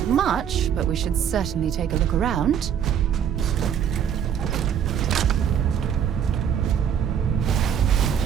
much, but we should certainly take a look around.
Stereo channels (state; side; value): quieter; left; 8.6 dB